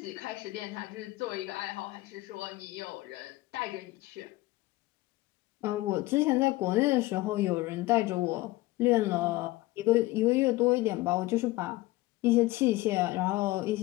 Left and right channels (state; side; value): quieter; right; 19.2 dB